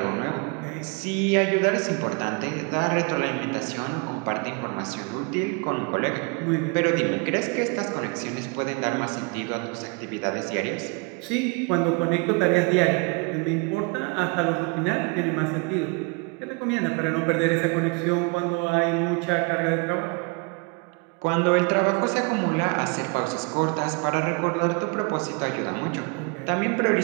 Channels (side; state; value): left; quieter; 31.8 dB